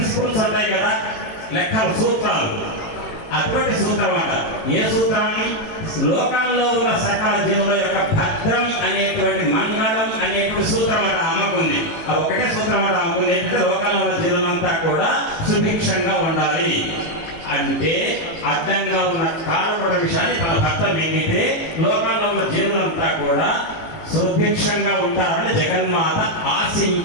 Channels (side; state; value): right; late; 18 ms